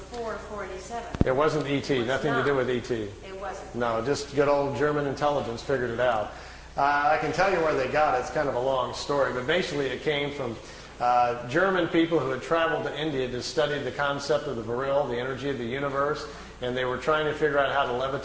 487. It wasn't ET, nothing to do with ET. It wasn't. No, just good old German intelligence figured it out. I can tell you where they got it. It's kind of a long story, but basically it came from German people who had traveled to India to study the concept of the Vril, the energy of the universe, and they were trying to figure out how to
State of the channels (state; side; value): identical; both; correlation 1.00